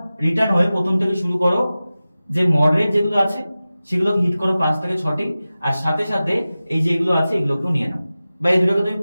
রিটার্ন হয়ে প্রথম থেকে শুরু করো, যে মডারেট যেগুলো আছে সেগুলোকে হিট করো 5 থেকে 6টি, আর সাথে সাথে এই যে এগুলো আছে এগুলোকেও নিয়ে নাও, বা এই দুটোকে তুমি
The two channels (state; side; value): inverted; both; correlation -0.96